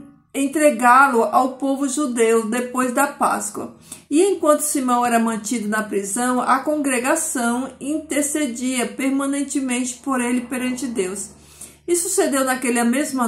entregá-lo ao povo judeu depois da Páscoa. E enquanto Simão era mantido na prisão, a congregação intercedia permanentemente por ele perante Deus. E sucedeu naquela mesma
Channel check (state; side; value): identical; both; correlation 1.00